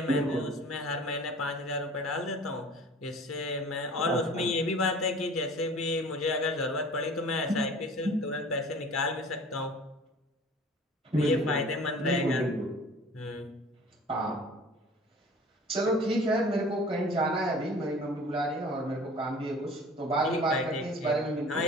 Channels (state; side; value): normal; both; correlation 0.45